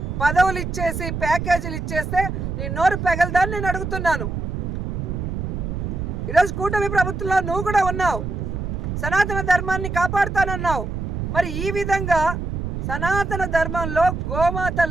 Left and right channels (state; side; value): noise; right; rumble, 4 dB below the sound